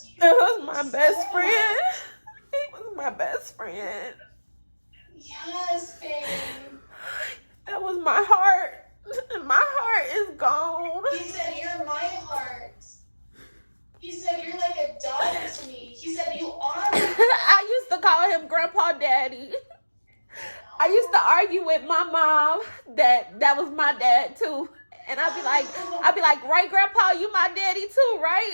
you. That was my best friend. He was my best friend. Yes, babe. That was my heart. My heart is gone. He said, you're my heart. He said, you're like a daughter to me. He said, you are my I used to call him Grandpa Daddy. I used to argue with my mom that was my dad too. And I'd be like, right, Grandpa, you my daddy too,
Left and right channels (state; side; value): inverted; both; correlation -1.00